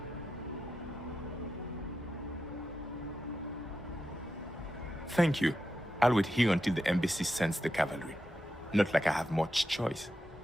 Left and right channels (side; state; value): both; normal; correlation 0.88